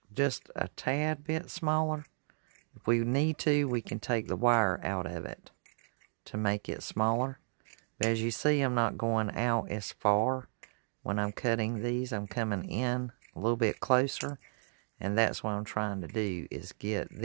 just a tad bit smaller. If we need to, we can take the wire out of it to make it smaller. But as you see, I'm not going out as far. When I'm cutting these, I'm coming in a little bit closer. And that's what I'm trying to do, is get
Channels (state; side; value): silent; left; digital silence